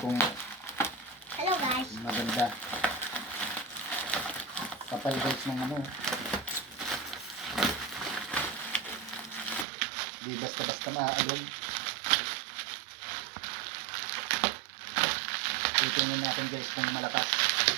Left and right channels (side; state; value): left; drops out; at 9.7 s